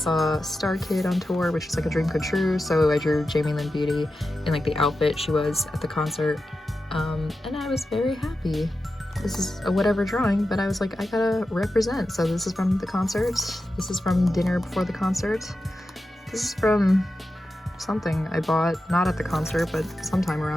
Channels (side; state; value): both; normal; correlation 0.91